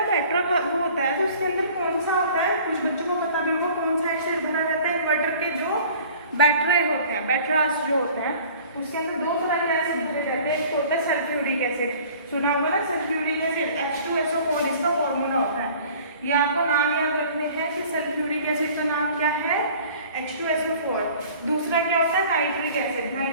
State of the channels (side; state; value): both; inverted; correlation -0.49